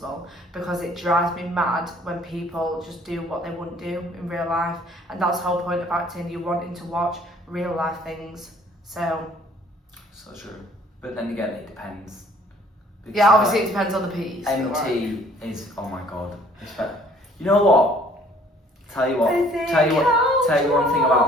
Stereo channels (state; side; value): normal; both; correlation 0.57